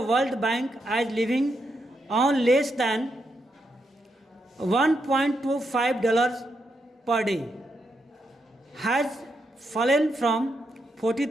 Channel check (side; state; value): both; normal; correlation 0.82